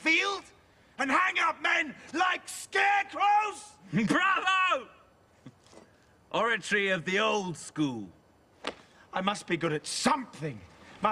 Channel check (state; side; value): identical; both; correlation 1.00